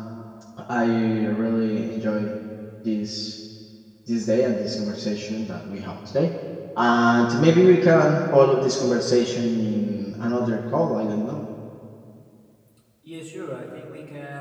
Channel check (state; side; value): identical; both; correlation 1.00